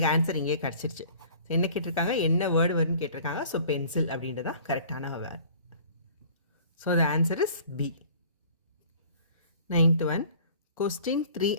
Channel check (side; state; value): both; inverted; correlation -0.49